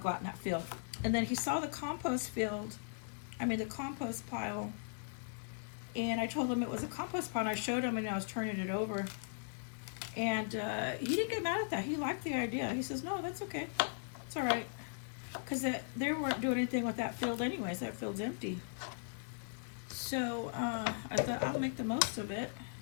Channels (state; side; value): silent; right; 52 dB below the other